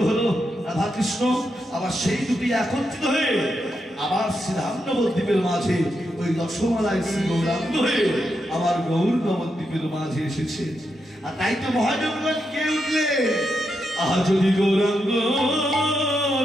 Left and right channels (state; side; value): normal; both; correlation 0.84